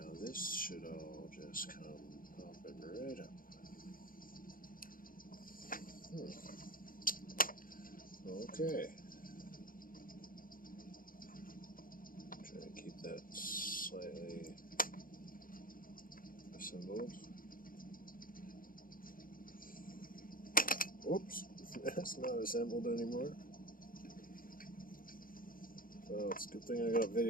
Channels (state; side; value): late; right; 0.41 ms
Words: this should all just come popping right up. Okay. Try to keep that slightly assembled. Oops, that's not assembled anymore. Well, it's a good thing I got